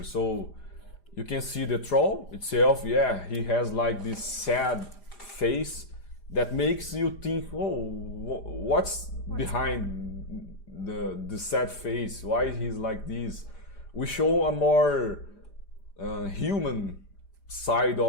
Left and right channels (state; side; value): late; right; 5.0 ms